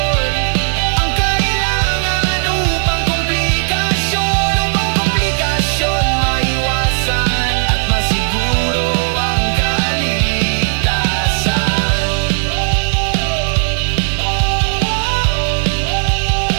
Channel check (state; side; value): silent; left; 59 dB below the other